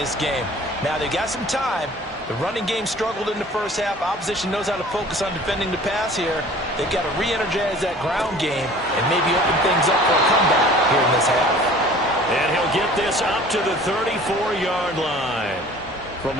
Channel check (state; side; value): normal; both; correlation 0.47